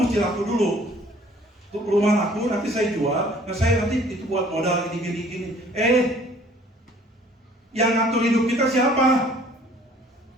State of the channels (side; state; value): both; normal; correlation 0.55